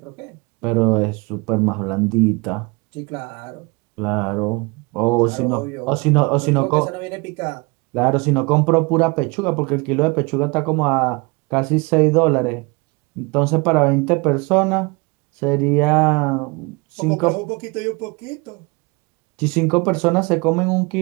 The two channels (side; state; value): left; quieter; 27.3 dB